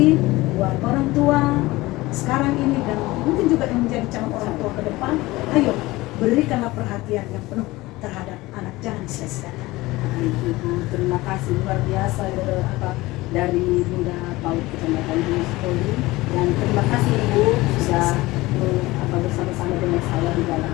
buat orang tua sekarang ini dan mungkin juga yang menjadi calon orang tua ke depan, ayo berikanlah perhatian yang penuh terhadap anak, jangan sia-siakan. Ibu, terima kasih luar biasa dari Bunda Paul Kecamatan Gunung Story, dan terima kasih Ibu sudah bersama-sama dengan saya di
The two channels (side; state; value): right; quieter; 19.8 dB